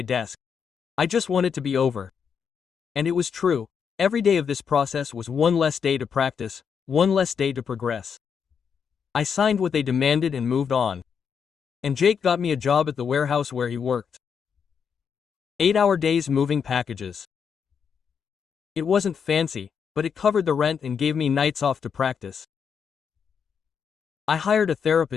desk. I just want it to be over. And it was true. Every day of this process was one less day to practice, one less day to progress. I signed what they demanded and moved on. And Jake got me a job at the warehouse where he worked. 8-hour days moving packages. It wasn't fancy, but it covered the rent and gave me nights off to practice. I hired a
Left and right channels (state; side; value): quieter; right; 6.9 dB